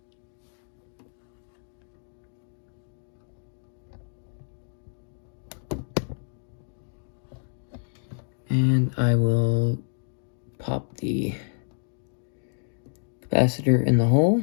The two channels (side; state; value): right; silent; digital silence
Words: And I will pop the capacitor in the